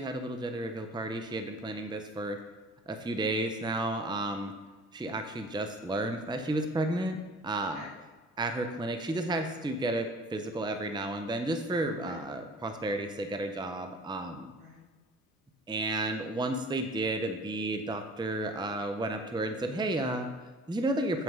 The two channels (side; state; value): both; normal; correlation 0.46